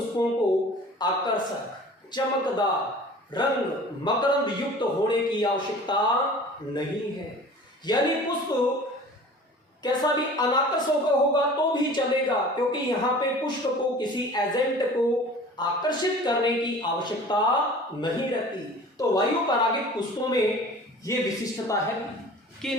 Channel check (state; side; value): normal; both; correlation 0.43